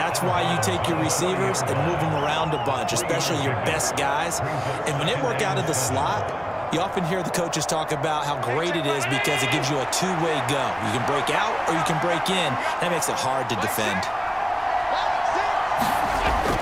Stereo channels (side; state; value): both; identical; correlation 1.00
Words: why you take your receivers and move them around a bunch, especially your best guys. And when they work out of the slot, you often hear the coaches talk about how great it is because it gives you a two-way go. You can break out or you can break in. That makes it hard to defend.